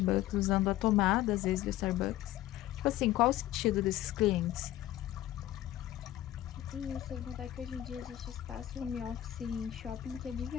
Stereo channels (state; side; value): quieter; right; 13.9 dB